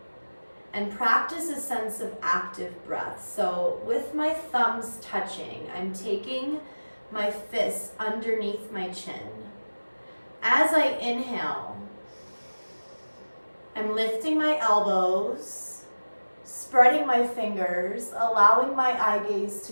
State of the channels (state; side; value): inverted; both; correlation -1.00